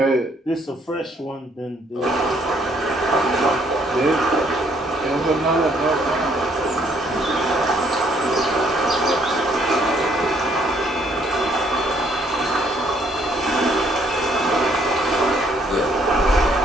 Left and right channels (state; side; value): normal; both; correlation 0.66